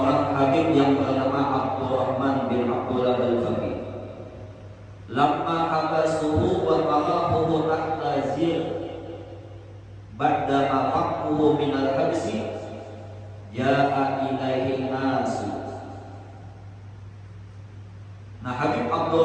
habib yang bernama Abdurrahman bin Abdullah al-Faqih. Lamma habasuhu wa qarahuhu tahta zir ba'da maqahuhu min al-habsi ja'a ilaihi nasu. Nah Habib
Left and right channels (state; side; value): identical; both; correlation 1.00